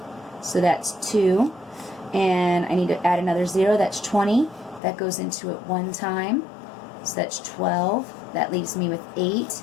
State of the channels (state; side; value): drops out; right; at 4.8 s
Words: So that's 2. And I need to add another 0, that's 20. That goes into it 1 time. So that's 12. That leaves me with 8.